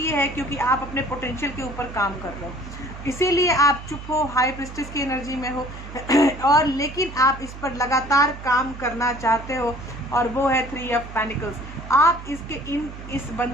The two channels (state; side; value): noise; right; hum, 12 dB below the sound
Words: है क्योंकि आप अपने पोटेंशियल के ऊपर काम कर रहे हो, इसीलिए आप चुप हो, हाई प्रिस्टेस की एनर्जी में हो और लेकिन आप इस पर लगातार काम करना चाहते हो, और वो है 3 ऑफ पेनिकल्स। आप इस